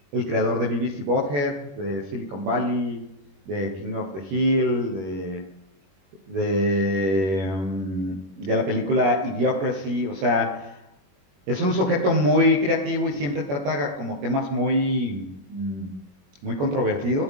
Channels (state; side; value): late; left; 21 ms